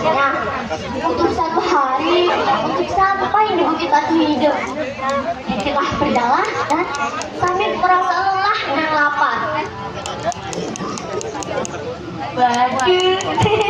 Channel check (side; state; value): both; identical; correlation 1.00